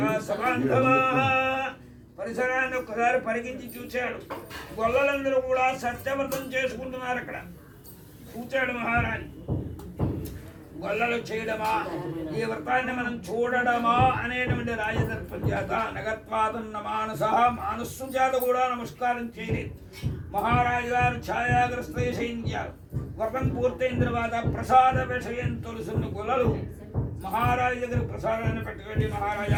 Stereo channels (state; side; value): identical; both; correlation 1.00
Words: సమాంధవా. పరిసరాన్ని ఒక్కసారి పరిగించి చూశాడు. గొల్లలందరూ కూడా సత్యవ్రతం చేసుకుంటున్నారు. అక్కడ చూచాడు మహారాజు. గొల్లలు చేయడమా, ఈ వ్రతాన్ని మనం చూడడమా అనేటువంటి రాజదర్పం చేత నగత్వాదన్న మానస్సు చేత కూడా నమస్కారం చేయలేదు. మహారాజు గారు ఛాయాగ్రస్త చేయించారు. వ్రతం పూర్తయిన తర్వాత ప్రసాద విషయం తెలుసున్న గొల్లలు మహారాజు దగ్గర ప్రసాదాన్ని పెట్టుకెళ్ళి,